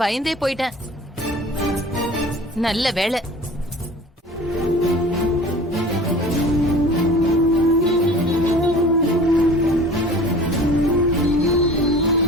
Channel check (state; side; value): normal; both; correlation 0.43